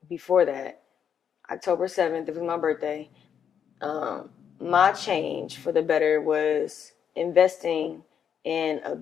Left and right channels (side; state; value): right; quieter; 8.0 dB